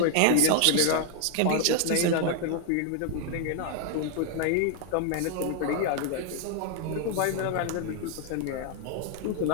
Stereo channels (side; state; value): both; different; correlation 0.00